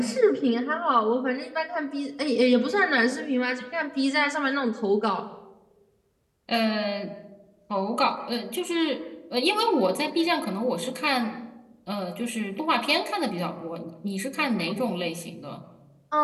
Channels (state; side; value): identical; both; correlation 1.00